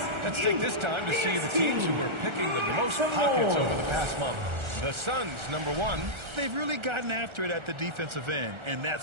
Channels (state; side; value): late; left; 1.4 ms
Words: Let's take this time to see the teams who were picking the most pockets over the past month. The Suns, number 1. They've really gotten after it at the defensive end, and